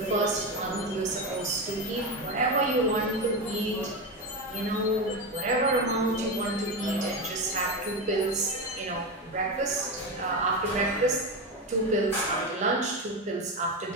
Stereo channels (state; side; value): normal; both; correlation 0.17